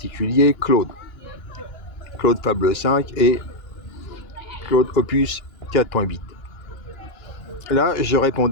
Claude Fable 5 et Claude Opus 4.8. Là, je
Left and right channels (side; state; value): right; late; 2.9 ms